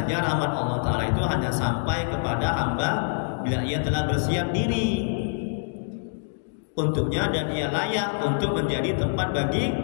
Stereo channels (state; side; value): silent; right; digital silence